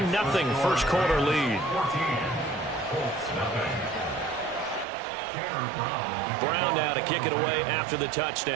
first quarter lead. Brown now to kick it away after the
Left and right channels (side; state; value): left; drops out; at 4.9 s